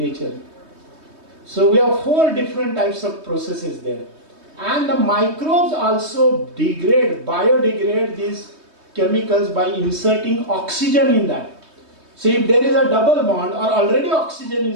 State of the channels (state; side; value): late; left; 3.2 ms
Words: So we have 4 different types of processes there. And the microbes also biodegrade these chemicals by inserting oxygen in that. So if there is a double bond or already oxygen